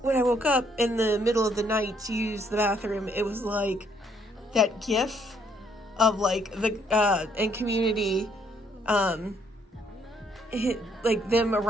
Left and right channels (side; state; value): both; normal; correlation 0.68